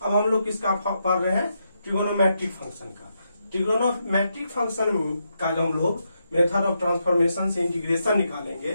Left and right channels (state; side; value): inverted; both; correlation -0.82